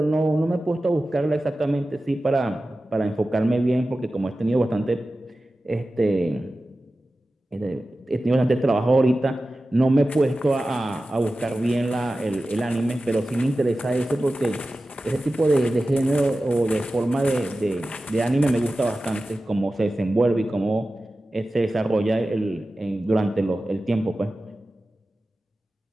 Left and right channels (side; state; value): both; normal; correlation 0.95